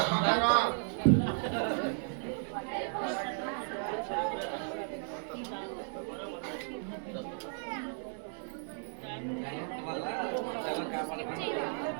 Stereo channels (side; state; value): left; silent; 55 dB below the other